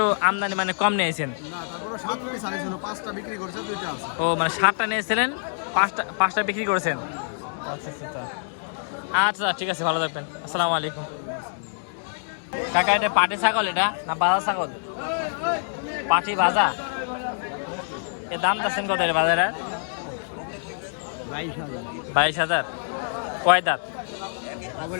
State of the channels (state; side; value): silent; right; digital silence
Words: আমদানি মানে কম নিয়েছেন। ও মানে 7টা নিয়েছিলেন, 5টা বিক্রি করেছেন। আচ্ছা আচ্ছা আচ্ছা, ঠিক আছে, ভালো থাকবেন। আসসালামু আলাইকুম। কাকা এটা পাটি ছাগল এটা না বাজা ছাগল? পাটি ভাজা। এর দাম যাচ্ছেন কত এটা বাজারে? 22,000। কয় দাঁত?